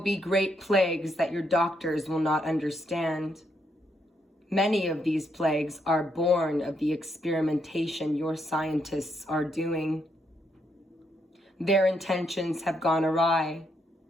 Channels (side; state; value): both; normal; correlation 0.77